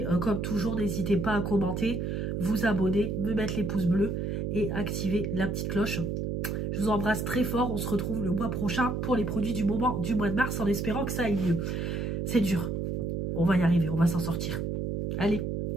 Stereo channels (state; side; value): noise; right; hum, 2 dB below the sound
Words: comme toujours, n'hésitez pas à commenter, vous abonner, me mettre les pouces bleus et activer la petite cloche. Je vous embrasse très fort. On se retrouve le mois prochain pour les produits du moment du mois de mars en espérant que ça aille mieux. C'est dur. On va y arriver, on va s'en sortir. Allez,